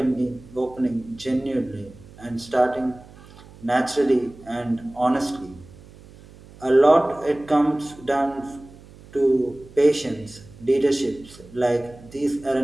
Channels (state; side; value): noise; right; hum, 21 dB below the sound